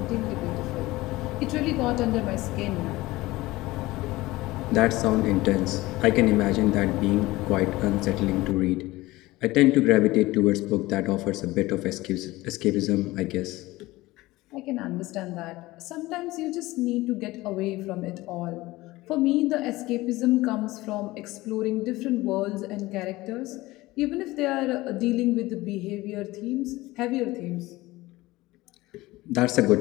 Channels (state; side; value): quieter; right; 19.2 dB